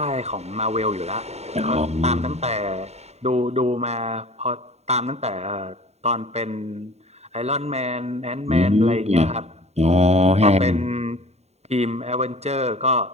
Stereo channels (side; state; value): left; late; 0.31 ms